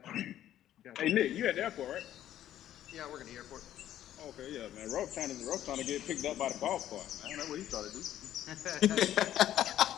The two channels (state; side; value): quieter; right; 12.0 dB